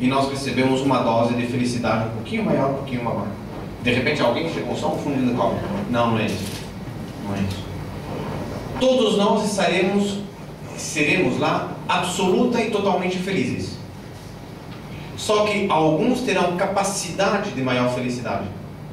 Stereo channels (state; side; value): identical; both; correlation 1.00